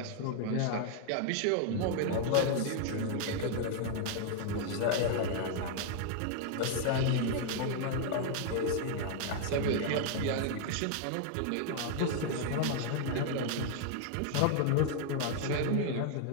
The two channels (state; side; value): different; both; correlation 0.00